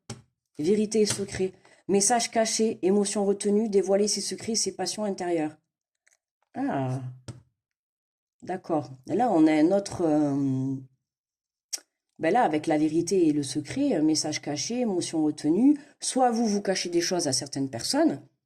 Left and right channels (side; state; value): both; identical; correlation 1.00